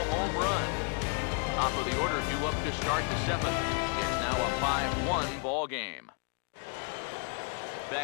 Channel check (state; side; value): quieter; right; 37.0 dB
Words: home run. Top of the order due up to start the 7th. It's now a 5-1 ball game.